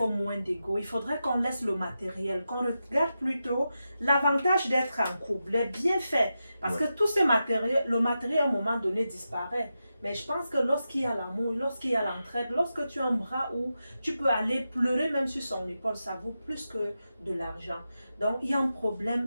moins d'ego. Il faudrait qu'on laisse le matériel, qu'on regarde plutôt l'avantage d'être en couple, les bienfaits. Parce que tout ce matériel, le matériel à un moment donné disparaît. Mais je pense que lorsqu'il y a l'amour, lorsqu'il y a l'entraide, lorsque tu as un bras où tu peux aller pleurer même sur son épaule, ça vaut plus que de l'argent. Donc, il y a un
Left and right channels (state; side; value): inverted; both; correlation -0.90